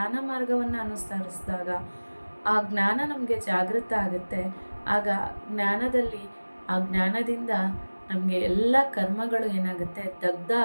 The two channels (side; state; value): both; inverted; correlation -1.00